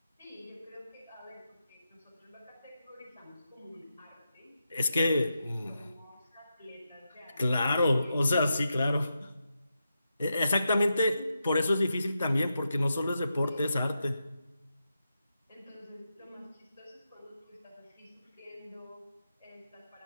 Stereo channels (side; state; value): both; inverted; correlation -0.87